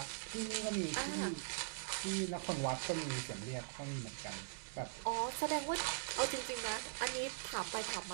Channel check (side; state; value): left; silent; digital silence